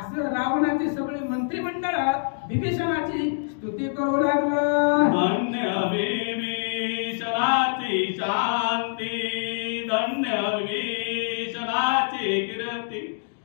रावणाची सगळी मंत्रिमंडळ विभीषणाची स्तुती करू लागलं. धन्य विभीषणाची शांती, धन्य विभीषणाची कीर्ती,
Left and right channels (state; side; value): silent; right; digital silence